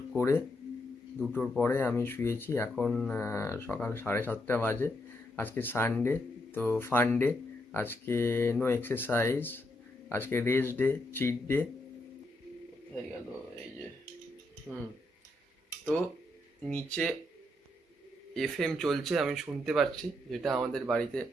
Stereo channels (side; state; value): both; normal; correlation 0.79